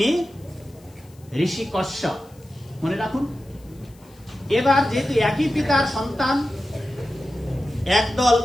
ঋষি কশ্যপ, মনে রাখুন। এবার যেহেতু একই পিতার সন্তান, একদল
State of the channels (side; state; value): left; noise; hiss, 29 dB below the sound